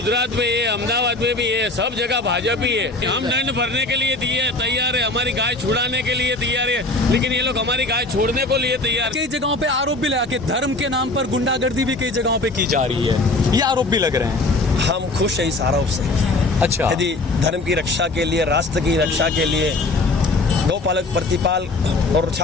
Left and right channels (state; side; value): quieter; right; 3.0 dB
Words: में ये, अहमदाबाद में भी है, सब जगह भाजपा ही है। हम दंड भरने के लिए तैयार है, हमारी गाय छुड़ाने के लिए तैयार है, लेकिन ये लोग हमारी गाय छोड़ने को लिए तैयार। कई जगहों पे आरोप भी लगा कि धर्म के नाम पर गुंडागर्दी भी कई जगहों पे की जा रही है, ये आरोप भी लग रहे हैं। हम खुश हैं इस आरोप से। अच्छा, यदि धर्म की रक्षा के लिए, राष्ट्र की रक्षा के लिए, गौपालक प्रतिपाल और